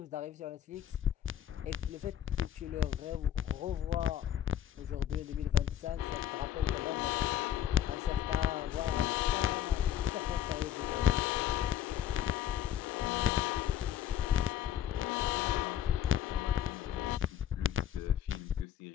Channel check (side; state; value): right; quieter; 10.5 dB